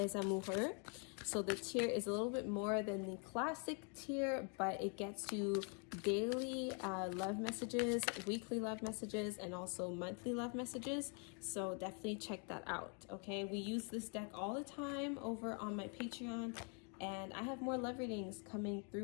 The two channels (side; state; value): right; quieter; 39.2 dB